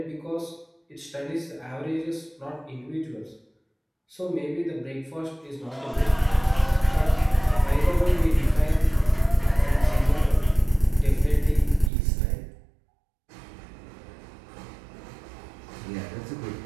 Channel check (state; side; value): drops out; left; at 11.9 s